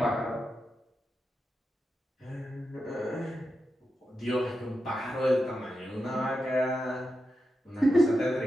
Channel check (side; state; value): both; normal; correlation 0.88